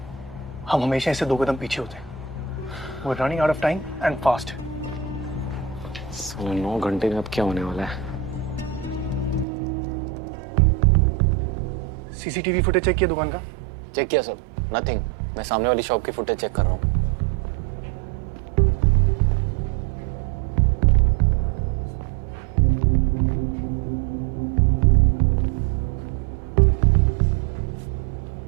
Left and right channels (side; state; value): left; drops out; at 9.5 s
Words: हम हमेशा इससे 2 कदम पीछे होते हैं। We're running out of time and fast. 9 घंटे में अब क्या होने वाला है? सीसीटीवी फुटेज चेक किया दुकान का? चेक किया सर, नथिंग। मैं सामने वाली शॉप की फुटेज चेक कर रहा हूँ।